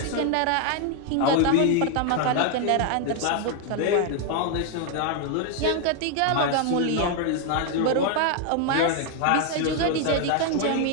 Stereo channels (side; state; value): both; different; correlation 0.00